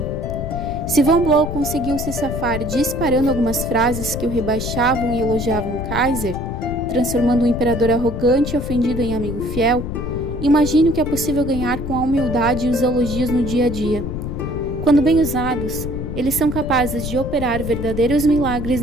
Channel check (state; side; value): noise; left; rumble, 5 dB below the sound